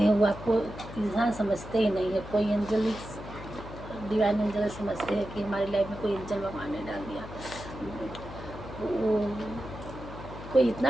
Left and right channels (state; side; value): noise; left; hum, 12 dB below the sound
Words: हैं, वो आपको इंसान समझते ही नहीं है। कोई एंजल, डिवाइन एंजल समझते हैं कि हमारी लाइफ में कोई एंजल भगवान ने डाल दिया। वो कोई इतना